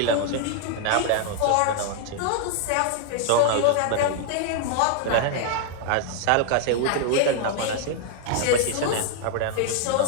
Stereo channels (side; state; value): both; different; correlation 0.00